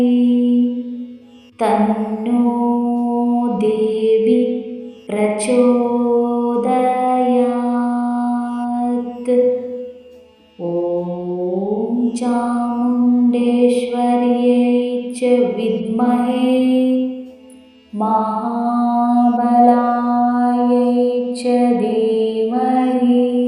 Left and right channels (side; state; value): both; identical; correlation 1.00